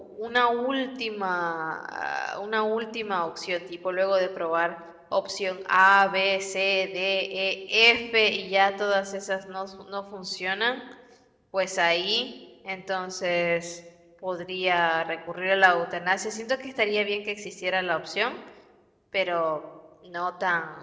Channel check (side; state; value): both; identical; correlation 1.00